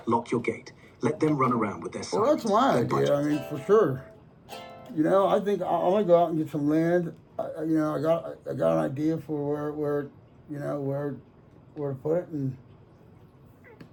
Lock your gate. Let them run around with their sons. Well, that's my idea. I mean, for sure. I think I'm gonna go out and get some land. I got an idea for where to put it, and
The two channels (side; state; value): both; identical; correlation 1.00